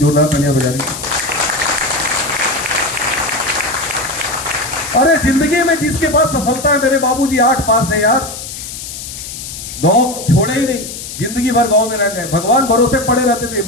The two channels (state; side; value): noise; left; hiss, 10 dB below the sound